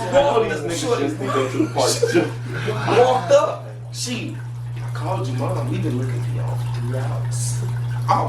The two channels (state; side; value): identical; both; correlation 1.00